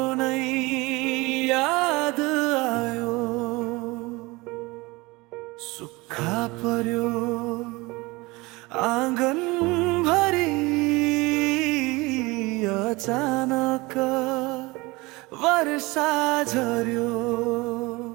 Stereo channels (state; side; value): quieter; left; 23.2 dB